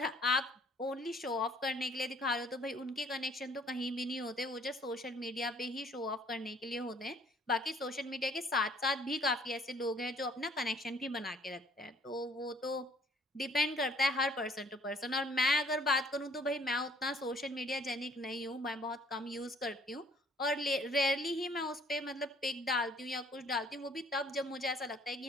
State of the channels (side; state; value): both; normal; correlation 0.59